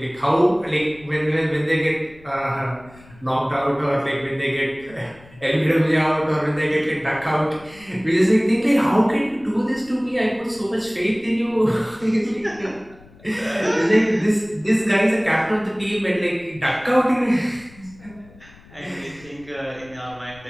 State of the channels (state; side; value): noise; left; rumble, 24 dB below the sound